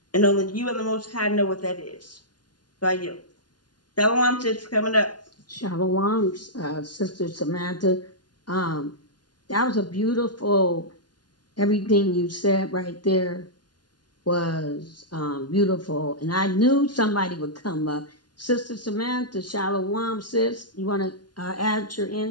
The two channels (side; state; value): right; late; 0.70 ms